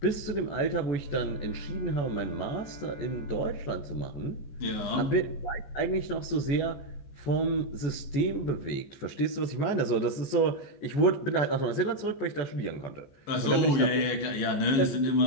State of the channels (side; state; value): right; late; 14 ms